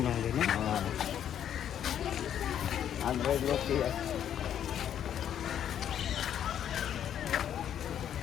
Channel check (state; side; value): quieter; right; 9.8 dB